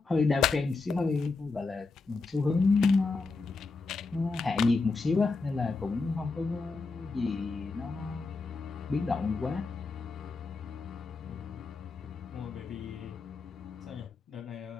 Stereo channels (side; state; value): right; quieter; 4.0 dB